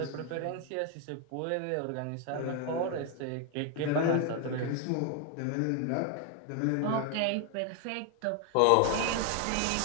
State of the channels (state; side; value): different; both; correlation 0.01